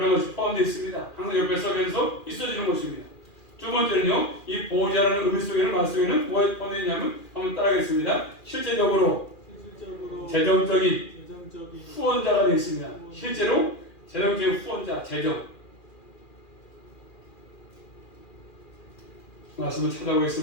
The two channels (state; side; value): late; right; 2.4 ms